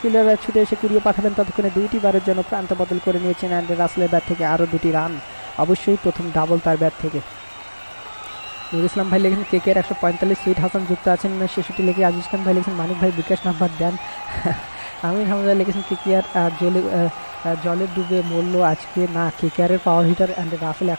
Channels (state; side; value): inverted; both; correlation -1.00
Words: ফিল্ডার ছুটে এসে কুড়িয়ে পাঠাবেন, ততক্ষণে 2টি বারের জন্য প্রান্ত বদল করে নিয়েছেন অ্যান্ডে রাসেলের ব্যাট থেকে আরও 2টি রান, অবশ্যই প্রথম ডাবল তার ব্যাট থেকে। নুর ইসলাম ভাই লেগেছেন KKR 145, সুইট হাসান যুক্ত আছেন 66 লেগে। আজিজ খান ভাই লেগেছেন মানিক ভাই বিকাশ নাম্বার দেন। আমির হামজা লেগেছেন KKR জলে ডুবে মরল আজকে না, KKR এর পাওয়ার হিটার অ্যান্ড রাসেল